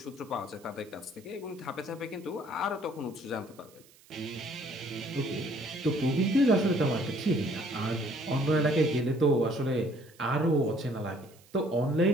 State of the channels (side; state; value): right; noise; hiss, 27 dB below the sound